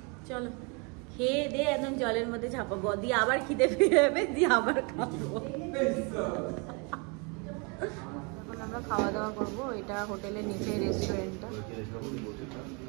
চলো খেয়ে দিয়ে একদম জলের মধ্যে ঝাঁপাবো, দিয়ে আবার খিদে পেয়ে যাবে, দিয়ে আবার খাবো। এখন আমরা খাওয়া দাওয়া করবো, এটা হোটেলের নিচে রেস্টুরেন্টটা।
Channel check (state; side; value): quieter; left; 32.4 dB